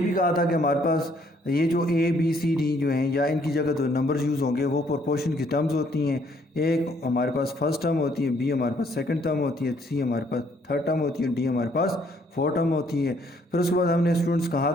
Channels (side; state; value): both; normal; correlation 0.66